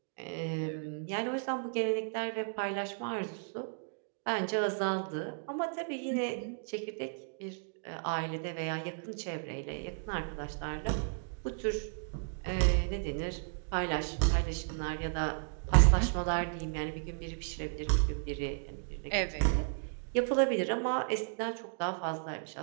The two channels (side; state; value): left; silent; digital silence